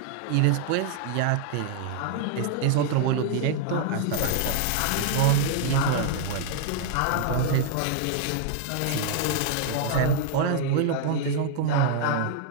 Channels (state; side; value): different; both; correlation 0.00